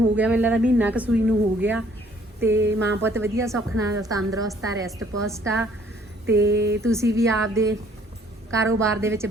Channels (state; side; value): normal; both; correlation 0.61